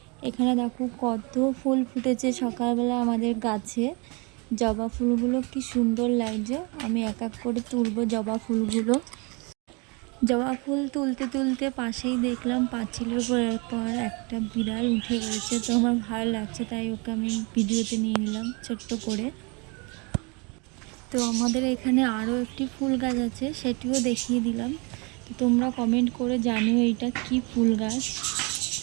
এখানে দেখো কত ফুল ফুটেছে সকালবেলা আমাদের গাছে। জবা ফুলগুলো কি সুন্দর লাগছে। আমি এক এক করে তুলবো জবা ফুলগুলো। জবা ফুল তুলতে তুলতে পাশেই দেখলাম পাঁচিলের উপরের পর একটা বিড়াল উঠে গেছে। তো আমার ভালো লাগছে, তাই ওকে আমি ভিডিওতে নিয়ে নিলাম ছোট্ট করে। তো আমাদের এখানে আরও একটি ফুল গাছ আছে, সেটিও দেখিয়ে দিলাম। তো তোমরা কমেন্ট করে জানিও এটা কি ফুল গাছ।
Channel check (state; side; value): quieter; left; 30.3 dB